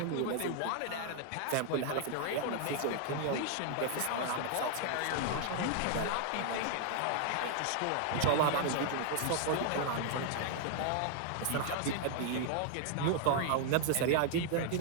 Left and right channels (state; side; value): different; both; correlation 0.00